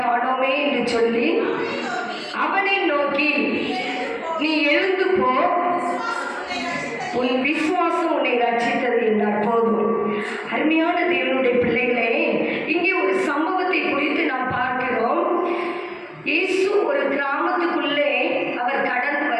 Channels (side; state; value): both; identical; correlation 1.00